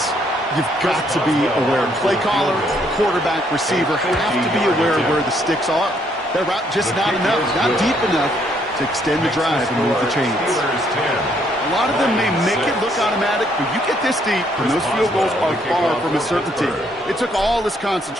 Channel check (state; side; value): normal; both; correlation 0.70